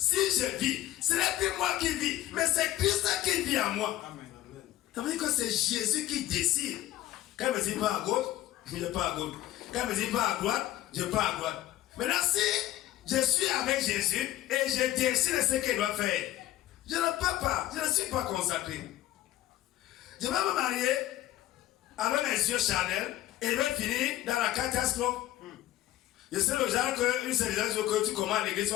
je vis, ce n'est plus moi qui vis, mais c'est Christ qui vit en moi. Ça veut dire que c'est Jésus qui décide. Quand il me dit pas à gauche, je ne vais pas à gauche. Quand il me dit pas à droite, je ne vais pas à droite. Maintenant, si je suis avec Jésus et je décide de ce qu'il doit faire, je ne peux pas, je ne suis pas consacré. Je vais me marier avec mes yeux charnels et je vais finir dans la catastrophe. Je sais le genre qu'une seule chose que tu commences à l'église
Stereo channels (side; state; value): right; quieter; 14.4 dB